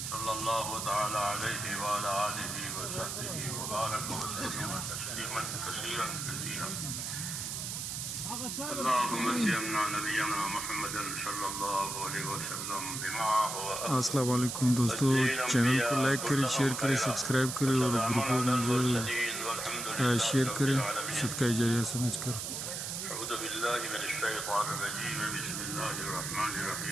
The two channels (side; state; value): right; noise; hiss, 4 dB below the sound